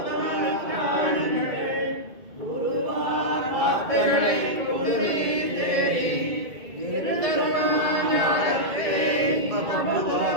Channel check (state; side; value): late; left; 2.2 ms